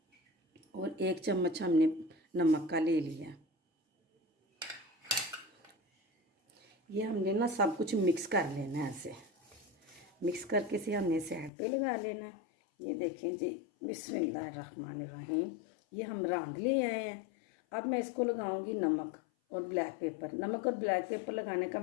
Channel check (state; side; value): drops out; right; at 11.5 s